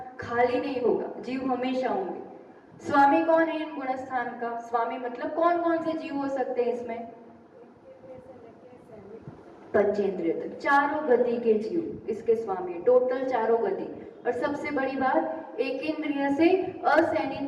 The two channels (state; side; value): identical; both; correlation 1.00